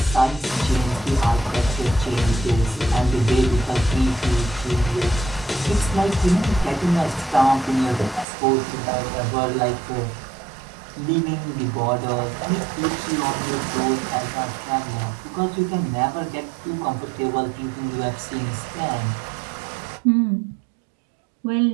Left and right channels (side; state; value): left; drops out; at 8.2 s